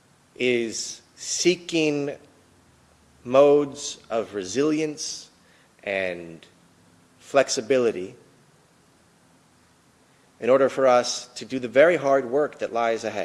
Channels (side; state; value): both; identical; correlation 1.00